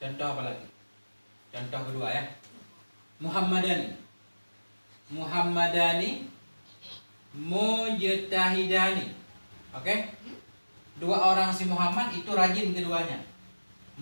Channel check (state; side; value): inverted; both; correlation -1.00